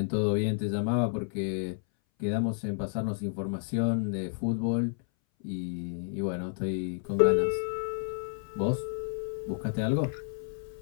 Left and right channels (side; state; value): right; silent; 57 dB below the other